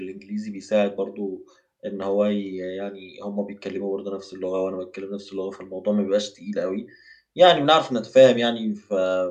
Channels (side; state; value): both; identical; correlation 1.00